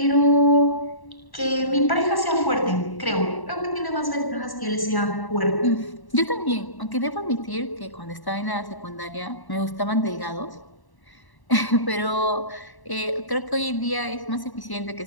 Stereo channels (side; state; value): right; late; 1.1 ms